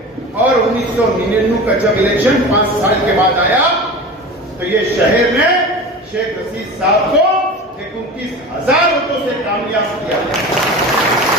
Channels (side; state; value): both; normal; correlation 0.33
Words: और 1999 का जब इलेक्शन 5 साल के बाद आया तो ये शहर में शेख रशीद साहब को 29,000 वोटों से कामयाब किया।